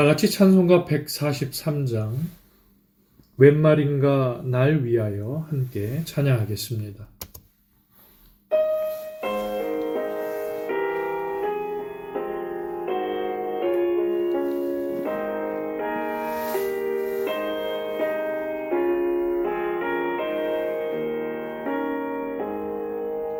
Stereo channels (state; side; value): identical; both; correlation 1.00